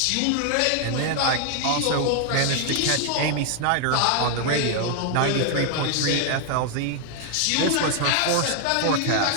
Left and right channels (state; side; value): different; both; correlation 0.00